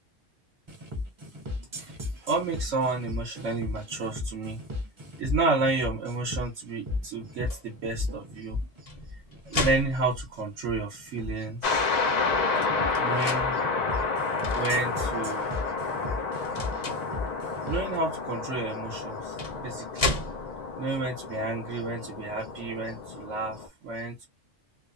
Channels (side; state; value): both; normal; correlation 0.22